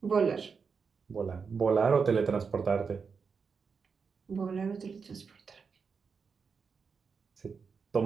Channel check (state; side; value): quieter; left; 5.6 dB